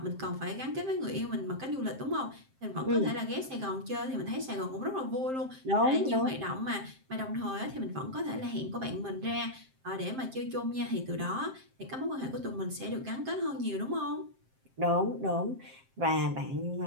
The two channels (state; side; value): late; left; 7.6 ms